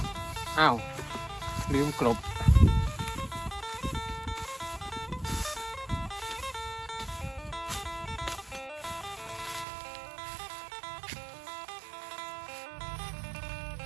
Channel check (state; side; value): drops out; left; at 9.7 s